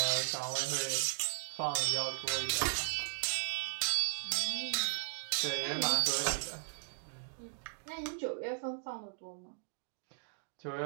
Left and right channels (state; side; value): silent; left; digital silence